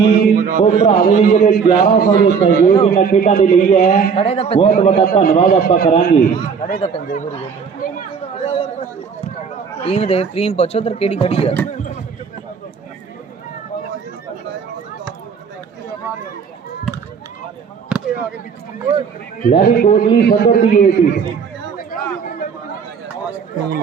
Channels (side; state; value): left; quieter; 6.1 dB